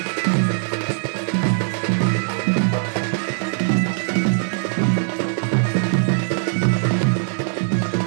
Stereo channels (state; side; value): silent; left; digital silence